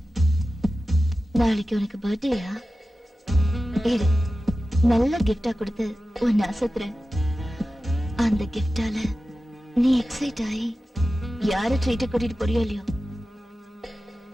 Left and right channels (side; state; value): both; normal; correlation 0.94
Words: நாளைக்கு உனக்கு பர்த்டேயா? இரு, நல்ல கிஃப்டா கொடுத்து உன்னை அசத்துறேன். அந்த கிஃப்டால நீ எக்ஸைட் ஆகி யார ட்ரீட் கூட்டிட்டு போறியோ இல்லையோ,